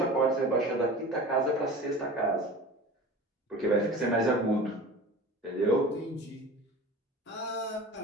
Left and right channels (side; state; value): both; normal; correlation 0.37